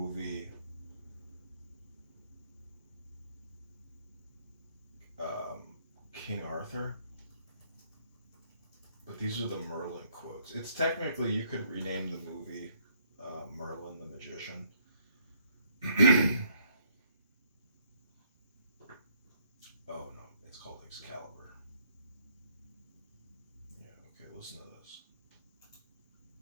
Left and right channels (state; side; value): inverted; both; correlation -0.68